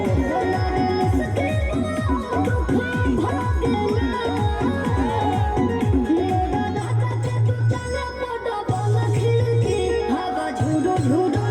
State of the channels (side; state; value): both; identical; correlation 1.00